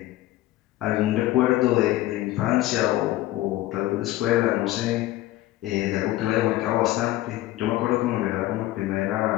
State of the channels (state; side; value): quieter; right; 15.9 dB